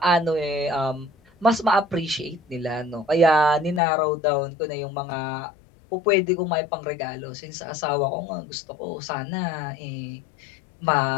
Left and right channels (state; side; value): drops out; right; at 3.8 s